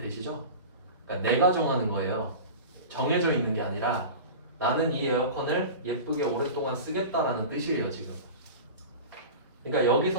그러니까 내가 정하는 거예요. 정해져 있는 게 아니라 나는 이 에어컨을 예쁘게 오랫동안 쓰겠다라는 뜻이에요, 지금. 그러니까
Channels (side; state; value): both; inverted; correlation -0.31